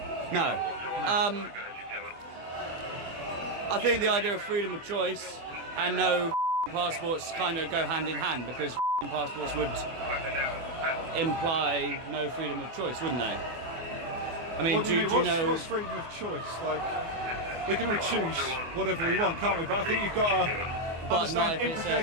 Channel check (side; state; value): left; late; 24 ms